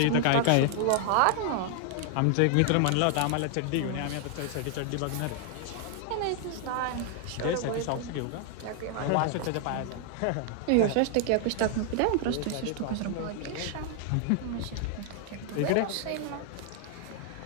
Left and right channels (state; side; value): different; both; correlation 0.00